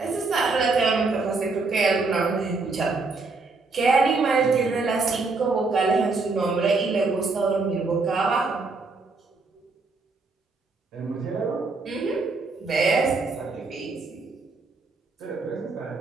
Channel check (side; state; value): left; quieter; 3.9 dB